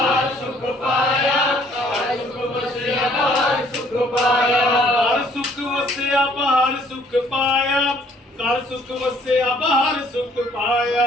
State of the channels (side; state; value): both; normal; correlation 0.61